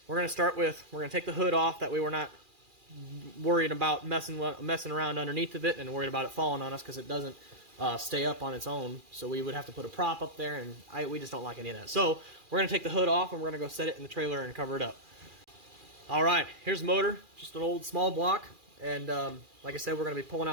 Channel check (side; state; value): left; late; 2.4 ms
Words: start with we're gonna take the hood off. That way we're not worried about messing around underneath of it and worried about it falling on us, because it doesn't stay up on its own. So we would have to put a prop up there, and we just don't like any of that. So we're gonna take the hood off and we're gonna go set it in the trailer and cover it up. All right, here's the motor, just an old small block, and like I said, we're gonna be pulling